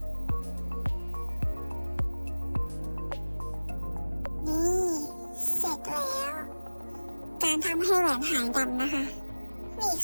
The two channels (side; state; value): both; inverted; correlation -1.00